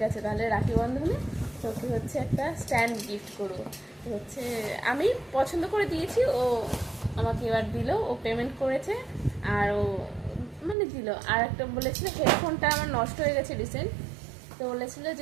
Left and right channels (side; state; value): left; drops out; at 10.8 s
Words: আছে তাহলে রাখি বন্ধনে তোকে একটা স্ট্যান্ড গিফট করবো। তো আমি পছন্দ করে দিয়েছি, ও আমাকে এবার দিল, ও পেমেন্ট করেছে। আর ও মানে দিল। আর একটা বলেছিল হেডফোনটা আমার নষ্ট হয়ে গেছে রিসেন্ট, তো বলেছিল